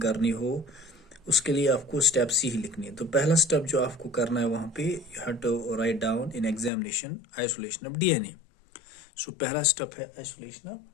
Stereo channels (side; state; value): right; drops out; at 6.7 s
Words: करनी हो, उसके लिए आपको स्टेप्स ही लिखनी है. तो पहला स्टेप जो आपको करना है वहाँ पे, you have to write down in examination isolation of DNA. So पहला स्टेप है आइसोलेशन ऑफ